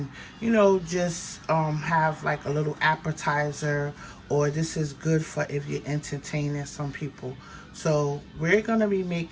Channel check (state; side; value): identical; both; correlation 1.00